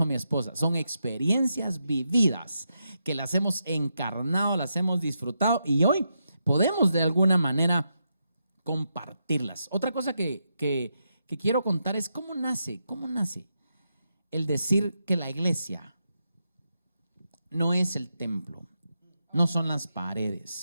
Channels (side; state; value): both; inverted; correlation -0.84